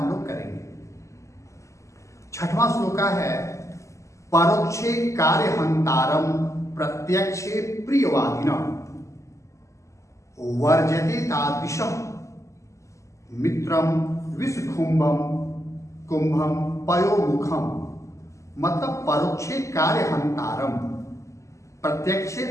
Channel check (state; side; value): late; right; 0.15 ms